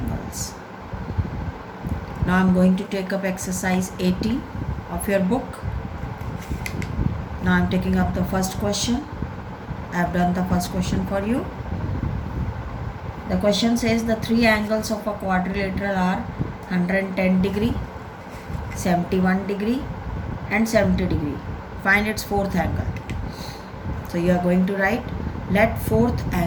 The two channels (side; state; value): both; identical; correlation 1.00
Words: Now I am going to take up exercise 18 of your book. Now I am taking up the first question. I have done the first question for you. The question says the three angles of a quadrilateral are 110 degree, 71 degree and 70 degree. Find its fourth angle. So you are going to write, let fourth